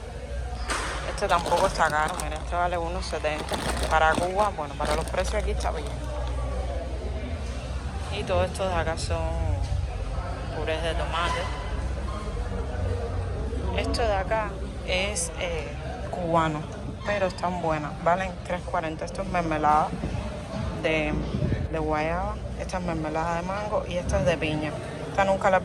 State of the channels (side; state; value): both; identical; correlation 1.00